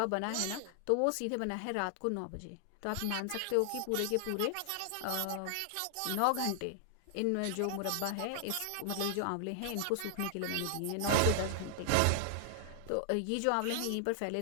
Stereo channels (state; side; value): different; both; correlation 0.00